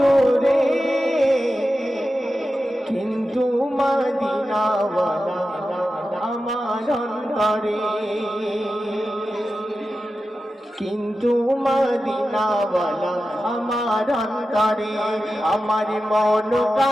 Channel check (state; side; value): normal; both; correlation 0.92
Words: কিন্তু মদিনাওয়ালা আমার অন্তরে, কিন্তু মদিনাওয়ালা আমার অন্তরে। আমার মন